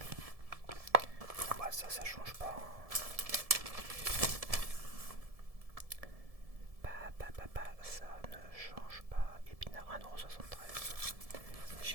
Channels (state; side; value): late; left; 1.7 ms